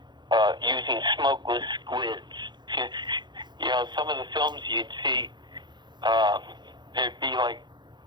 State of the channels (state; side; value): late; left; 0.21 ms